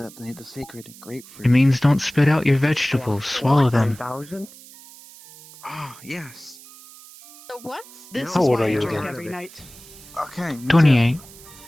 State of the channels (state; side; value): noise; right; hiss, 20 dB below the sound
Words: the sacred grapefruit. It means don't spit out your vegetables. Swallow them. 9,000? Ah, yes. The what? This How is old why are I you drink again? every night. Okay. me too. 28.